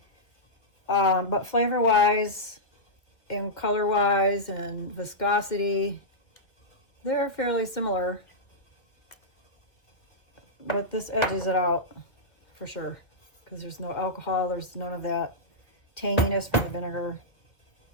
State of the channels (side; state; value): right; late; 1.7 ms